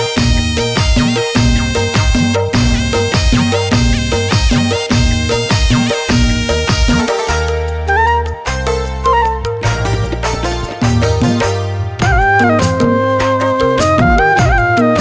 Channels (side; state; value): both; identical; correlation 1.00